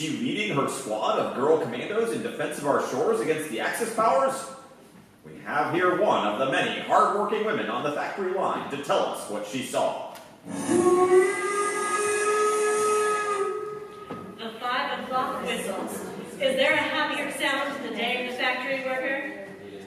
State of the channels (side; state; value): both; identical; correlation 1.00